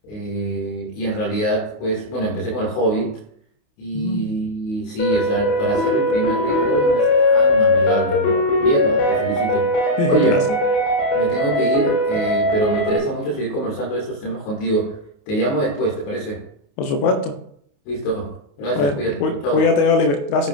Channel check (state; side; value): late; right; 28 ms